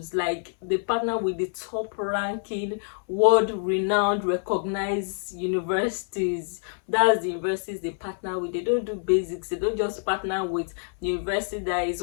Like, they partner with the top ranking, world renowned, recognized universities. That's the universities they partner with. They don't do basics. They don't just partner with the university that is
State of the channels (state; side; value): silent; right; 60 dB below the other